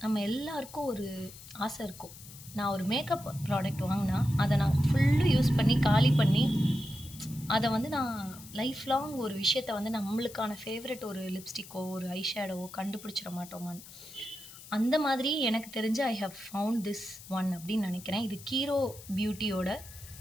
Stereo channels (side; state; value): left; noise; hiss, 17 dB below the sound